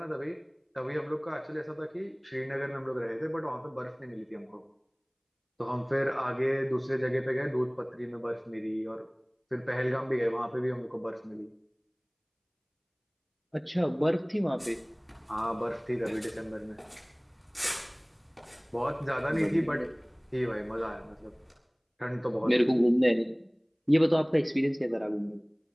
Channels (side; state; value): both; identical; correlation 1.00